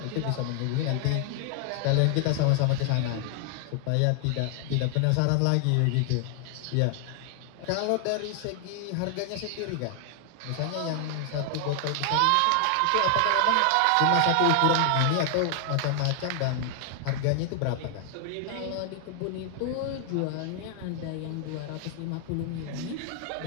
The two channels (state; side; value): different; both; correlation 0.00